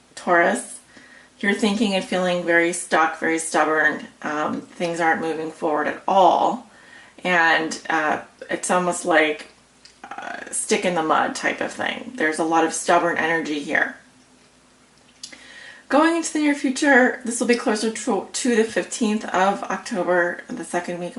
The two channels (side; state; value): both; identical; correlation 1.00